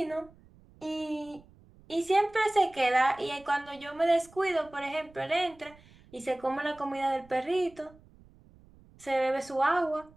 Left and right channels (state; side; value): noise; right; rumble, 26 dB below the sound